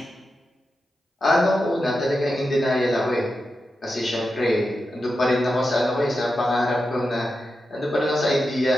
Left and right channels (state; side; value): normal; both; correlation 0.89